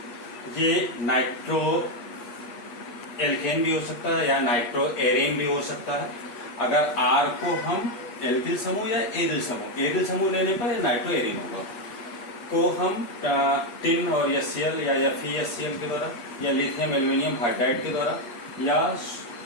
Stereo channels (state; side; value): late; right; 8.4 ms